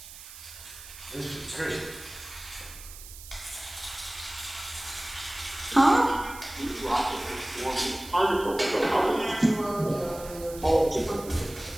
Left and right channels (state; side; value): noise; right; hiss, 15 dB below the sound